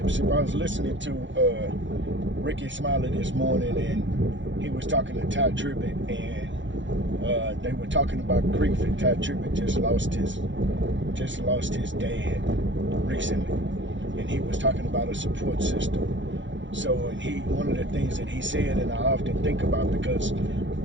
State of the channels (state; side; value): late; left; 0.54 ms